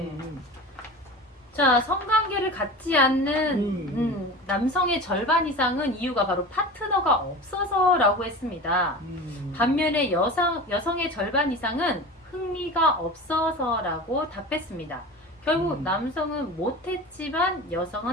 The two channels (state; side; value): normal; both; correlation 0.33